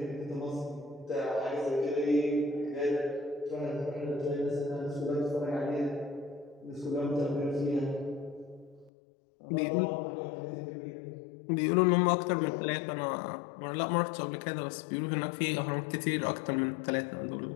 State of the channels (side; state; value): right; drops out; at 8.9 s